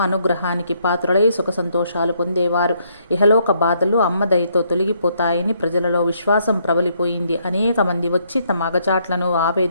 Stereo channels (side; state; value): both; inverted; correlation -0.71